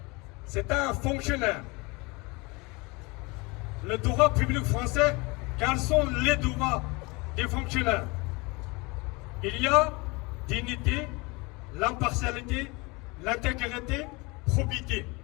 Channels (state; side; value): quieter; right; 26.2 dB